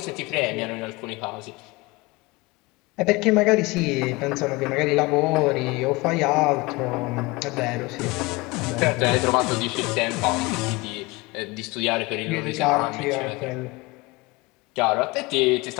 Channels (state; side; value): quieter; right; 23.7 dB